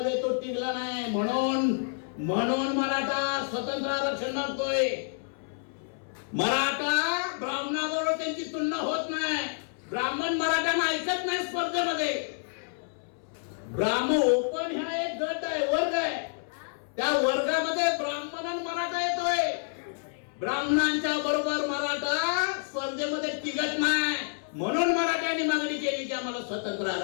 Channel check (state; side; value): silent; right; 59 dB below the other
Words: तो टिकला नाही. म्हणून मराठा स्वतंत्र आरक्षण मागतोय. मराठा ब्राह्मणाबरोबर त्यांची तुलना होत नाही. ब्राह्मण मराठ्यांना ऐकत नाही स्पर्धेमध्ये. ब्राह्मण ओपन ह्या एक गट आहे, वर्ग आहे, त्या वर्गामध्ये ब्राह्मण आणि मराठा येतोय. ब्राह्मणांच्या बरोबर मराठा स्पर्धेमध्ये टिकत नाही. म्हणून मराठ्यांनी मागणी केली की आम्हाला स्वतंत्र